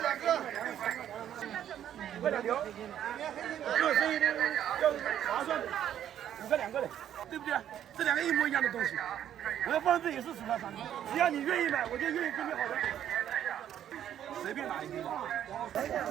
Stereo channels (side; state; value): left; quieter; 10.5 dB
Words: 5个2条，这生意要划算的，5个2个的，对不对？这两个一模一样的东西，我要放这也是10块3毛，只要你愿意买，我就愿意给你好的，随便拿一个。